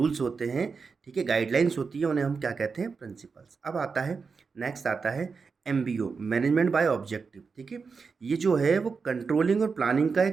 होते हैं, ठीक है, गाइडलाइंस होती है, उन्हें हम क्या कहते हैं, प्रिंसिपल्स। अब आता है, नेक्स्ट आता है एमबीओ, मैनेजमेंट बाय ऑब्जेक्टिव। ठीक है, ये जो है वो कंट्रोलिंग और प्लानिंग का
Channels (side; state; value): left; quieter; 5.1 dB